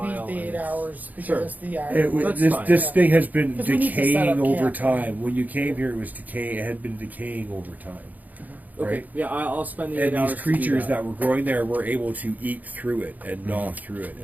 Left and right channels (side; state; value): left; late; 0.080 ms